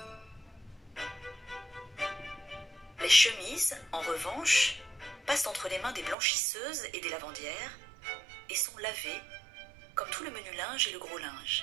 Les chemises, en revanche, passent entre les mains des blanchisseuses et des lavandières, et sont lavées, comme tout le menu linge et le gros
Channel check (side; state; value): left; drops out; at 6.2 s